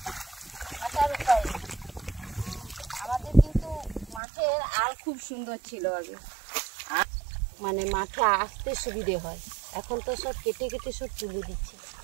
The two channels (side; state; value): left; drops out; at 4.2 s